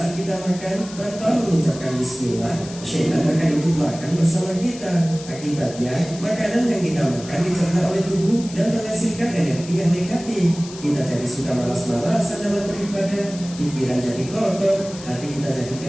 kita makan tanpa mengucapkan bismillah, syaitan akan ikut makan bersama kita. Akibatnya, makanan yang kita makan dicerna oleh tubuh dan menghasilkan energi yang negatif. Kita jadi suka malas-malasan dalam beribadah, pikiran jadi kotor, hati kita jadi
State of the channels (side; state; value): left; noise; hiss, 15 dB below the sound